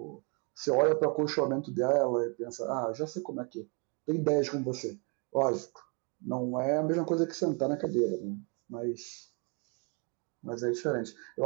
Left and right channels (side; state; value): left; quieter; 34.6 dB